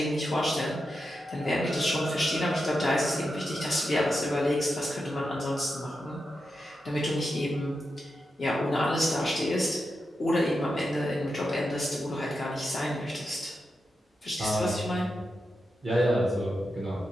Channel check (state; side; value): normal; both; correlation 0.88